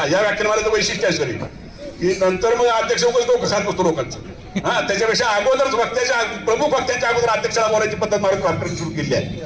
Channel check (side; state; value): both; identical; correlation 1.00